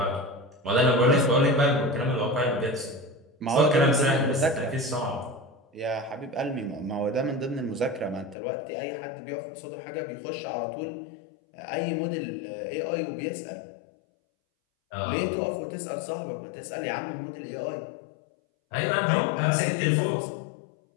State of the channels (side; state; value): right; drops out; at 8.3 s